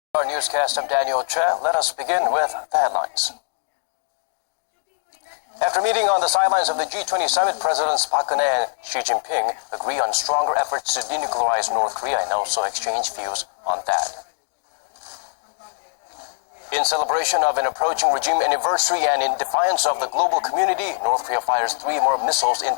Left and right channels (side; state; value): right; silent; digital silence